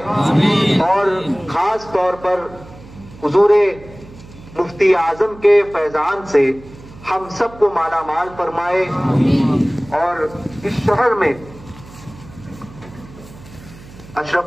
اور خاص طور پر حضور مفتی اعظم کے فیضان سے ہم سب کو مالا مال فرمائے، اور اس شہر میں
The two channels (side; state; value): right; noise; hum, 19 dB below the sound